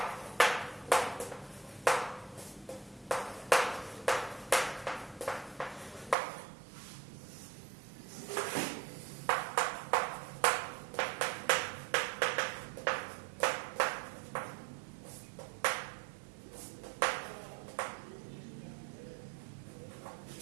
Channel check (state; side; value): drops out; left; at 6.2 s